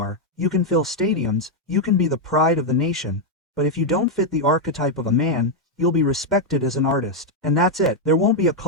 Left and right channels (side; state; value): both; normal; correlation 0.00